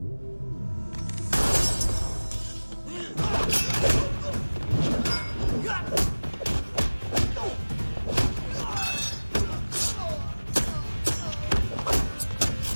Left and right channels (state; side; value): inverted; both; correlation -1.00